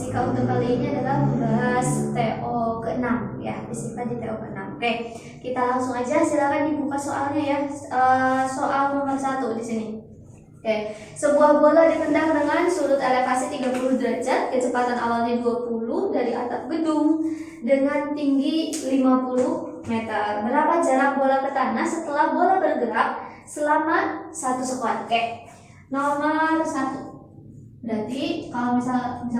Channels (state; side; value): identical; both; correlation 1.00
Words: untuk kali ini adalah membahas TO ke-6 ya, fisika di TO ke-6. Oke, kita langsung aja, silakan dibuka soalnya ya. Soal nomor 1 di sini. Oke, sebuah bola ditendang dengan sudut elevasi 30 derajat, kecepatan awalnya 20 dari atap gedung dengan tinggi 50 meter. Berapa jarak bola ke tanah setelah bola bergerak selama 1 sekon? Oke, nomor 1. Berarti kalau